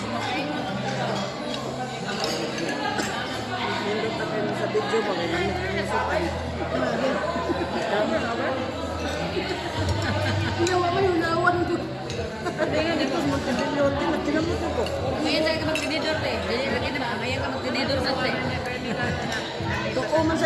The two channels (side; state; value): both; identical; correlation 1.00